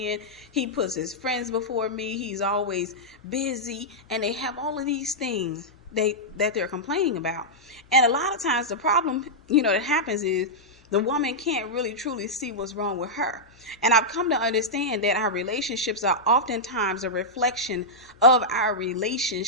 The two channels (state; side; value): noise; left; hum, 29 dB below the sound